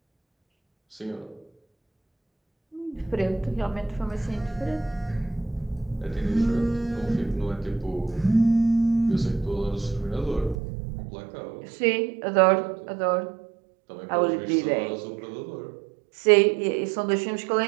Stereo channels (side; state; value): left; drops out; at 10.6 s